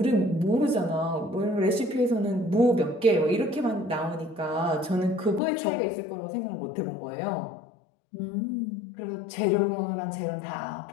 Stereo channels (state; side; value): drops out; right; at 5.4 s